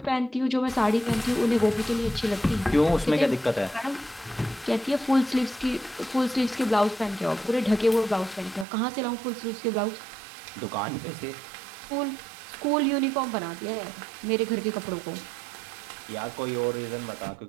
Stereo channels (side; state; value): left; drops out; at 8.7 s